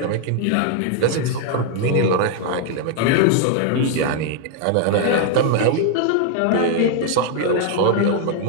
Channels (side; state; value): both; different; correlation 0.00